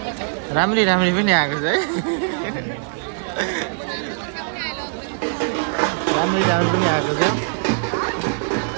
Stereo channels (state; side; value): silent; left; 58 dB below the other